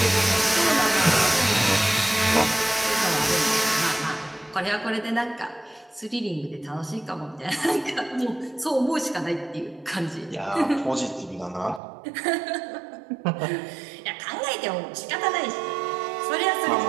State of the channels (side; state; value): left; drops out; at 11.8 s